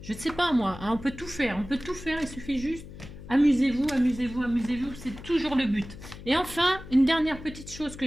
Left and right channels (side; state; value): left; noise; hum, 14 dB below the sound